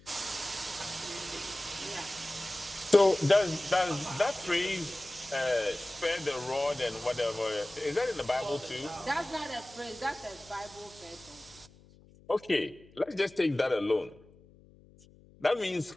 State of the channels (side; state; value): left; noise; hum, 25 dB below the sound